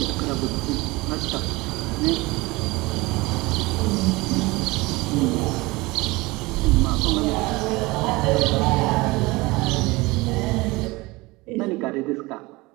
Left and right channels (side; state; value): left; quieter; 22.5 dB